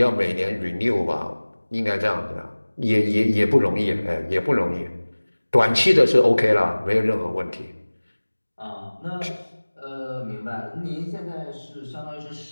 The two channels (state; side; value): inverted; both; correlation -1.00